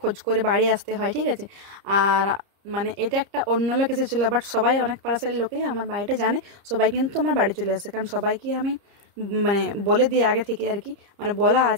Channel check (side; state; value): left; late; 30 ms